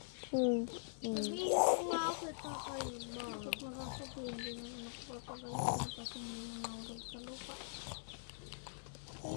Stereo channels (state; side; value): silent; right; digital silence